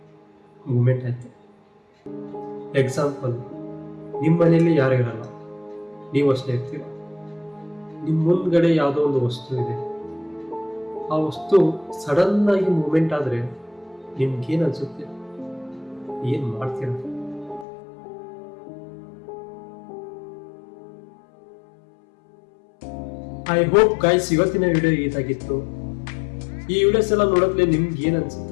ಮೂಮೆಂಟ್ ಆಯಿತು. ಎಕ್ಸಾಂಪಲ್, ನಿಮ್ಮ ಮನೆಯಲ್ಲಿ ಯಾರು ಇರಲ್ಲ, ನೀವು ಅಷ್ಟೇ ಇರ್ತೀರ. ನಿಮ್ಮ ಮುಂದ್ಗಡೆ ಯಾವುದೋ ಒಂದು ವಸ್ತು ಇದೆ, ಆ ವಸ್ತು ಸಡನ್ನಾಗಿ ಮೂಮೆಂಟ್ ಆದರೆ ನಿಮ್ಗೇನು ಅನಿಸುತ್ತೆ? ಏನು ಮಾಡ್ತೀರ? ಐ ಹೋಪ್ ಗೈಸ್ ಇವತ್ತಿನ ವಿಡಿಯೋ ಇದಾಗಿತ್ತು. ಈ ವಿಡಿಯೋಸ್ ಎಲ್ಲ ನೋಡೋದ್ಲೆ ನಿಮ್ಗೆ ಏನು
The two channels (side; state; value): right; drops out; at 17.7 s